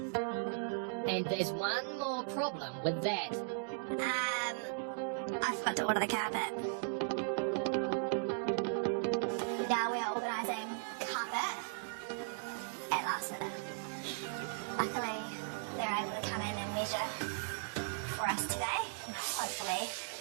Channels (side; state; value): left; silent; digital silence